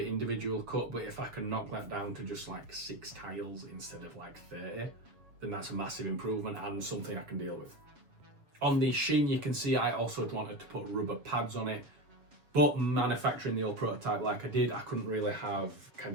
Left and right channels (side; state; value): left; late; 7.2 ms